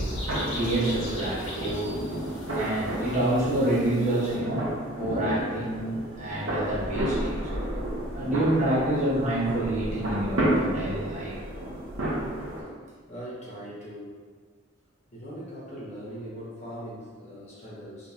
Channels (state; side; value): normal; both; correlation 0.48